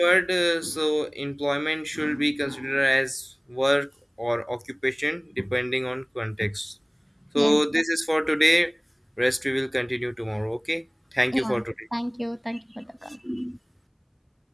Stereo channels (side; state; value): both; identical; correlation 1.00